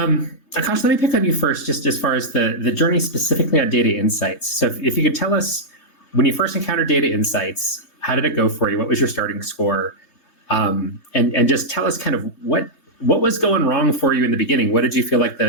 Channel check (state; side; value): late; right; 3.6 ms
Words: let me pick on you first, just as far as the journey specifically on data insights. So if you could tell us, when you first encountered data insights, how did it go for you? What was your starting score? And just tell us kind of what was going wrong for you in the beginning? What did you feel like